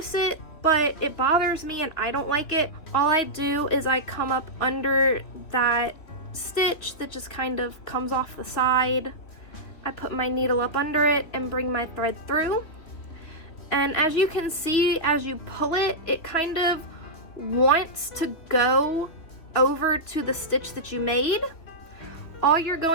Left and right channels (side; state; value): right; late; 3.0 ms